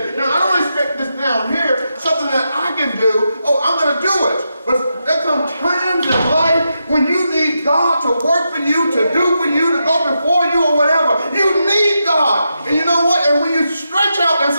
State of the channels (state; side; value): inverted; both; correlation -0.85